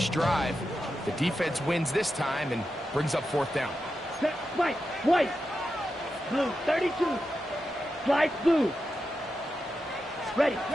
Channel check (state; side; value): normal; both; correlation 0.89